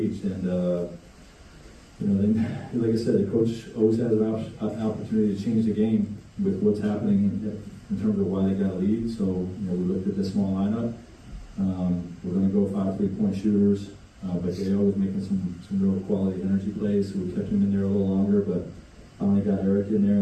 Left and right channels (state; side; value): identical; both; correlation 1.00